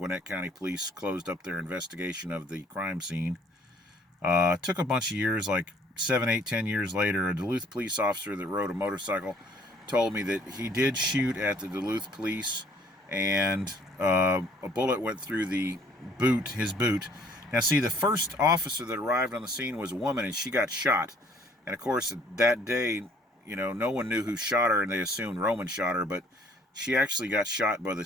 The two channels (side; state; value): both; normal; correlation 0.59